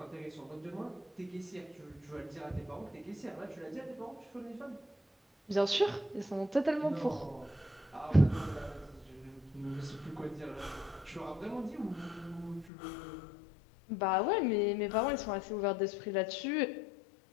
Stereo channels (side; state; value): right; drops out; at 12.7 s